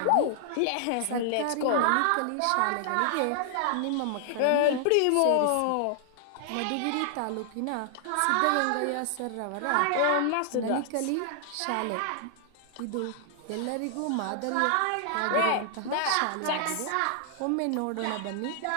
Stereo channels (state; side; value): different; both; correlation 0.00